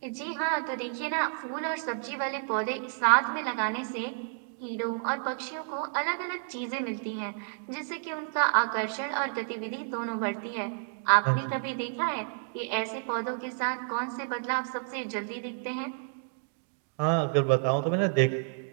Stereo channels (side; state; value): left; silent; digital silence